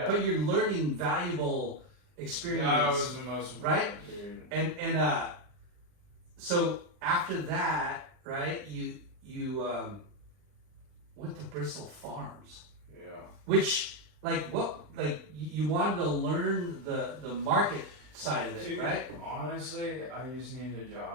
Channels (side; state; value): left; late; 39 ms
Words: But you're learning valuable experience. That was the most important, right? dude. And so after that, right? You went to Bristol Farms, Yeah. which you wanted to learn the market side of it, Dude, right? honestly, I just needed a